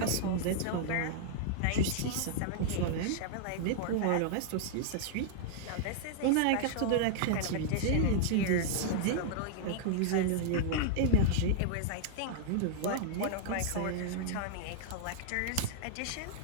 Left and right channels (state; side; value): different; both; correlation -0.01